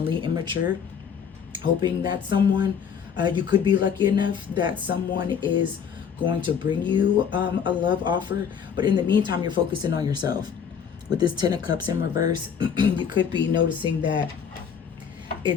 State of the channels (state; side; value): quieter; right; 7.3 dB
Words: immature, hoping that someone, you could be lucky enough that someone is going to bring you a love offer, but in the meantime, you're focusing on yourself. With this 10 of Cups in reverse, you could be noticing that